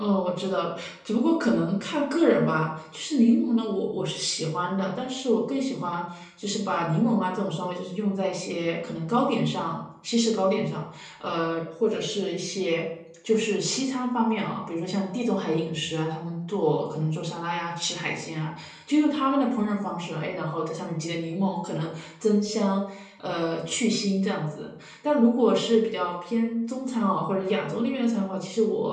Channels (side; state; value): both; identical; correlation 1.00